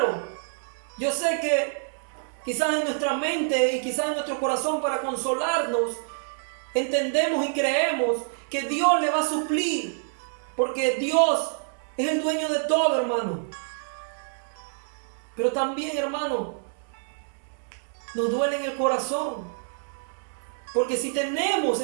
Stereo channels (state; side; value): silent; left; 60 dB below the other